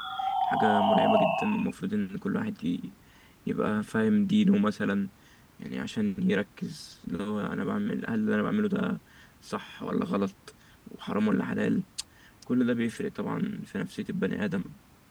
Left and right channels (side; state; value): both; identical; correlation 1.00